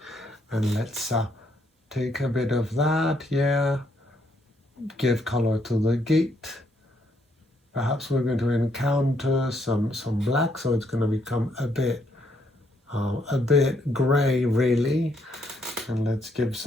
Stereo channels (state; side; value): normal; both; correlation 0.72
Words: And let's take a bit of that, yeah. Give color to the gate. Perhaps we're going to encounter some black, so it's going to become a bit gray, really. And let's give